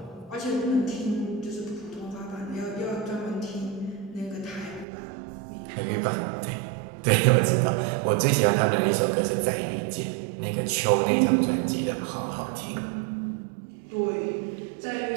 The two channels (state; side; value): drops out; left; at 4.9 s